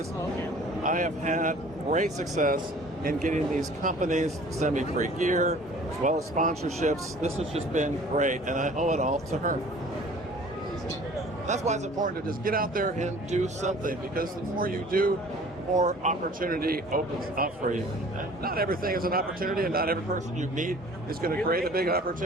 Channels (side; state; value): both; normal; correlation 0.49